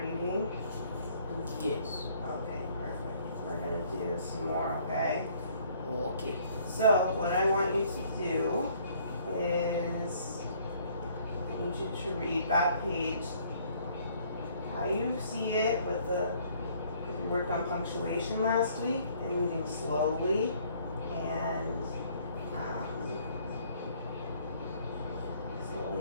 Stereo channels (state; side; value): inverted; both; correlation -0.61